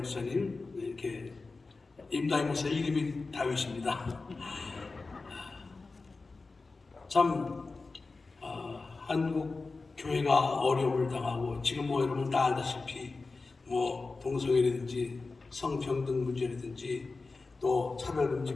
이렇게 임다희 목사 이름이 다윗입니다. 참 한국 교회가 어려움을 당하고 지금 뭐 여러분 다 알다시피 뭐 동성애라든지 성평등 문제라든지 또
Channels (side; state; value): right; quieter; 3.8 dB